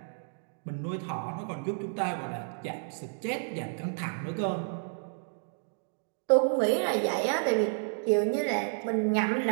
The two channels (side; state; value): left; silent; digital silence